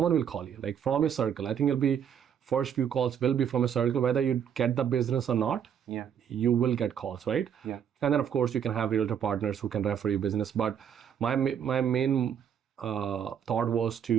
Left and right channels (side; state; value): left; quieter; 8.5 dB